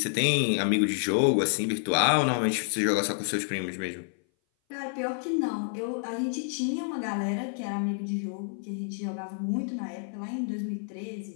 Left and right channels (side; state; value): right; silent; 57 dB below the other